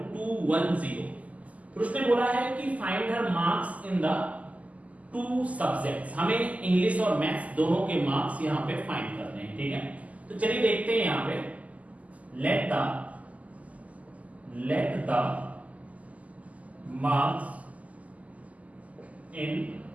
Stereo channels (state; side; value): late; left; 0.073 ms